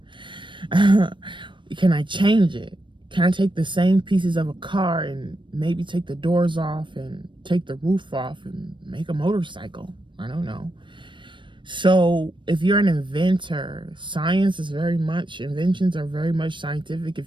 Can I change it? Can I take the same pieces of a car and maybe take the doors off and take the roof off and make a motorcycle? I don't know. So if you're an inventor, inventions are very much scientific.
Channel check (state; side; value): late; left; 0.23 ms